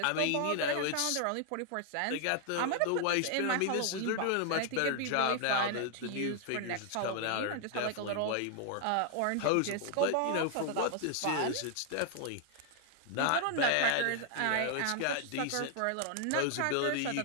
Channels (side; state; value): both; different; correlation 0.00